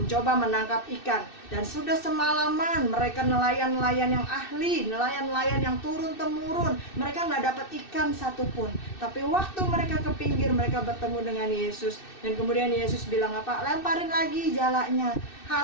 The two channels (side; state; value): right; late; 2.6 ms